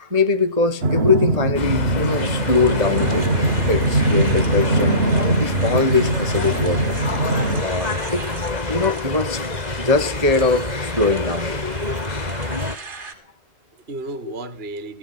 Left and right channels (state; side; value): late; left; 2.0 ms